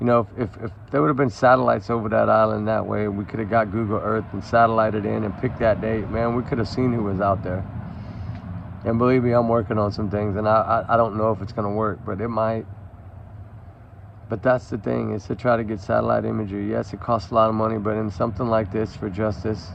know, if there would have been satellites over that island that way, we could have got Google Earth and satellited in and picked that date, man, we could have seen who was out there. And believe me, I'm working on some things, and I don't know if it's going to work, but it might. But that's the thing, is to try to get satellite imagery. Yes, it costs a lot of money, but in something like this, for justice,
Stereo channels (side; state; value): both; identical; correlation 1.00